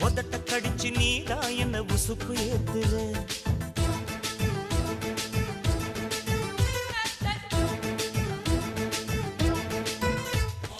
உதட்ட கடிச்சு நீதான் என்ன உசுப்பு ஏத்துற.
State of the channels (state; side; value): identical; both; correlation 1.00